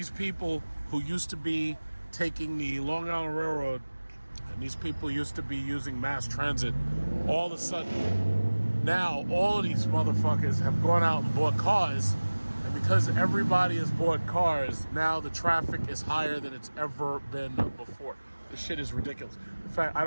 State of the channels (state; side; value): inverted; both; correlation -1.00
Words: people who used to be taking the Long Island Railroad, and these people used to be using mass transit, all of a sudden, now all of these motherfuckers have gone out and bought cars. And because everybody has bought cars, now the traffic is higher than it's ever been before. This shit is ridiculous. In fact, I